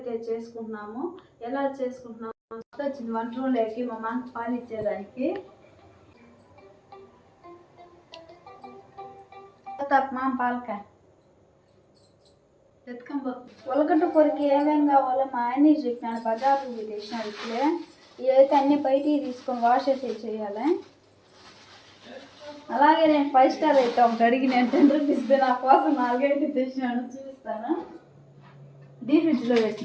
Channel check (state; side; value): identical; both; correlation 1.00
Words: చేసుకుంటున్నాము. ఎలా చేసుకుంటున్నాము వచ్చింది వంట రూమ్లోకి మా మామ పాలు ఇచ్చేదానికి. మామ పాలకాయ ఉలగడ్డ కూరకి ఏమేమి కావాలో మా ఆయన చెప్పినాడు. బజార్కి తెచ్చినాడు. ఇప్పుడే ఇవైతే అన్ని బయటికి తీసుకొని వాష్ అయితే చేయాలి. అలాగే నేను 5 స్టార్ అయితే ఒకటి అడిగి నేను 10 రూపీస్ నా కోసం 4 అయితే తెచ్చినాను, చూపిస్తాను. డీప్ ఫ్రిడ్జ్లో